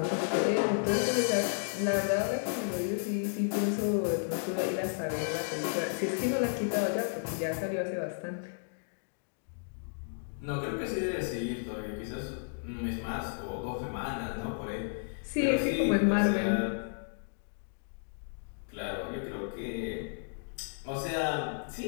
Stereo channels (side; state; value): right; silent; digital silence